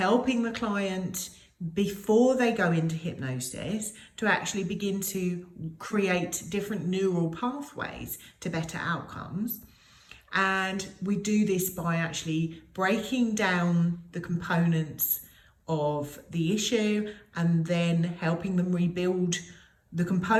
the client before they go into hypnosis to actually begin to create different neural pathways to better outcomes. And we do this by actually breaking down the components of the issue and then helping them rebuild the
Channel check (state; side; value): identical; both; correlation 1.00